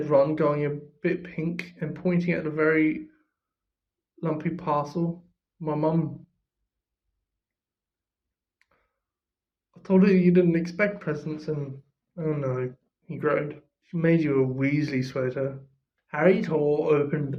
Ron, going a bit pink and pointing at a very lumpy parcel. "My mum. I told her you didn't expect presents and... oh no," he groaned. "She made you a Weasley sweater." Harry tore open the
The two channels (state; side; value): identical; both; correlation 1.00